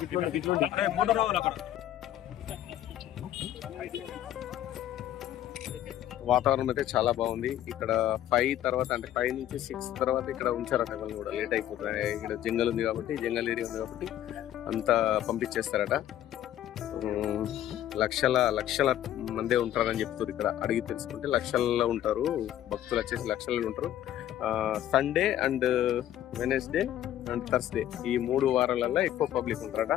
వాతావరణం అయితే చాలా బాగుంది. ఇక్కడ 5 తర్వాత అంటే 5 నుంచి 6 తర్వాత ఇక్కడ ఉంచారట వాళ్ళు కూడా లేట్ అయిపోతుంది. ఇక్కడ జంగల్ ఉంది కాబట్టి జంగల్ ఏరియా ఉంది కాబట్టి అంతా పంపించేస్తారట. లక్షల మందే ఉంటారని చెప్తారు. ఇక్కడ అడిగి తెలుసుకుంటే లక్షల్లో ఉంటారు భక్తులు, వచ్చేసి లక్షల్లో ఉంటారు. Sunday and Wednesday and Thursday ఈ 3 వారాలలో ఎక్కువ పబ్లిక్ ఉంటారట.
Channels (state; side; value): quieter; right; 12.2 dB